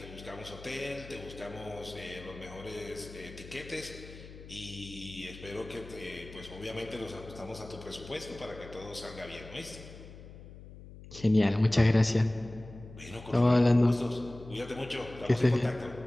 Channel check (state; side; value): noise; left; hum, 16 dB below the sound